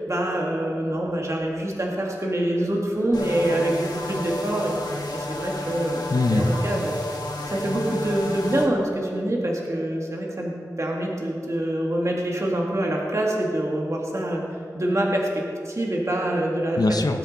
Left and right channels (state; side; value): normal; both; correlation 0.89